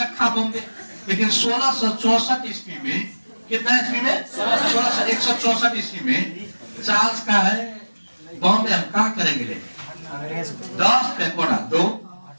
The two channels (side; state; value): both; inverted; correlation -1.00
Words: रखा बॉम्बे, लेकिन 1664 ईस्वी में कितना ईस्वी में? 164 ईस्वी में चार्ल्स का है बॉम्बे हम क्या करेंगे ले? 10 पेकोड़ा दो,